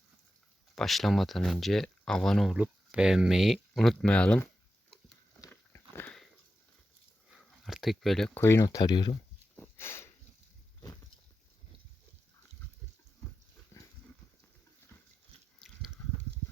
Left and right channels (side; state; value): both; normal; correlation 0.90